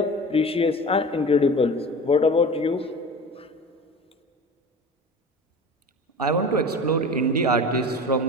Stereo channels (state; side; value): normal; both; correlation 0.36